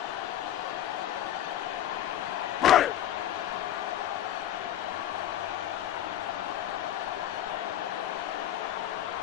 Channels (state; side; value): quieter; right; 11.8 dB